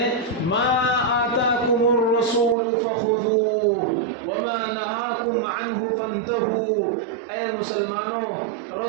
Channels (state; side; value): drops out; left; at 2.6 s